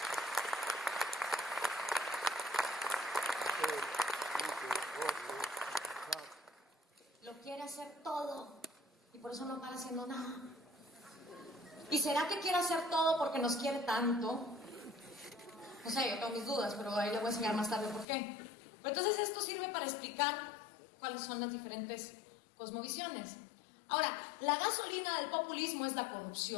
Lo quiere hacer todo y por eso no para haciendo nada. ¿Y será que quiere hacer todo porque nos quiere tanto? No sé, yo tengo mis dudas, pero ahí le voy a enseñar más tarde por qué. Pero entonces esto sirve para explicar cuáles son las diferentes cosmovisiones. Ahora, la gasolina del populismo es la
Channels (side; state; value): right; drops out; at 18.1 s